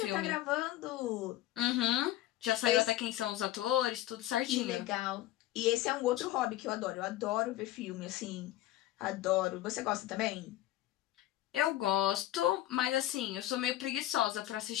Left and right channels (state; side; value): quieter; right; 14.4 dB